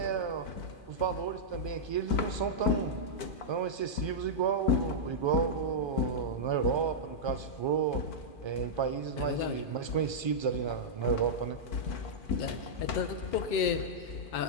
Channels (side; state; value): right; late; 2.4 ms